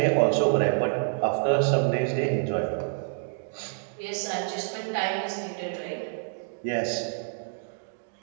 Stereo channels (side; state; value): left; silent; digital silence